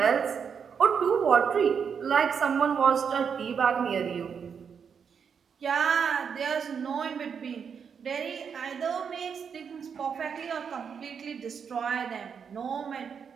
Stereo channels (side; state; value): left; quieter; 6.8 dB